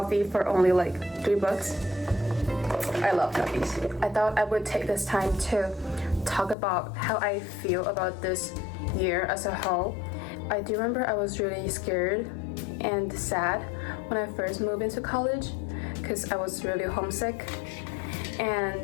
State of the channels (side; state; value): right; drops out; at 6.6 s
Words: for only like $3. I love coffees. I thought I would take this time to talk about how I feel about this year as a whole. I do remember I was really scared and sad when I first moved into college because I was really homesick,